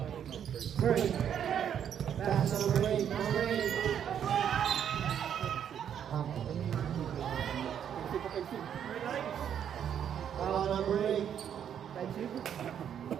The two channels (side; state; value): left; quieter; 9.0 dB